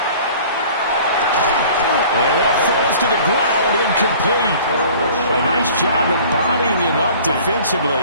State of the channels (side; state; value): both; inverted; correlation -0.48